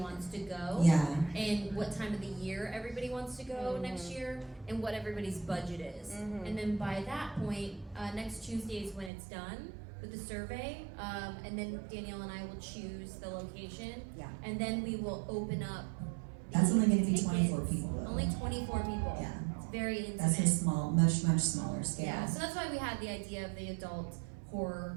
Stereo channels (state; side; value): drops out; left; at 9.1 s